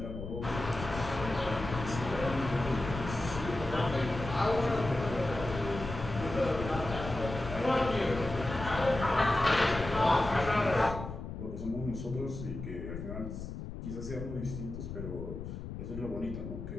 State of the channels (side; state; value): left; noise; rumble, 8 dB below the sound